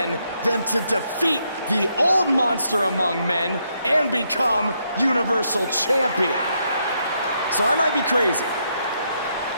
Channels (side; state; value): both; inverted; correlation -0.77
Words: than to defeat the old monster among men and become Universal Champion? So I might be crazy,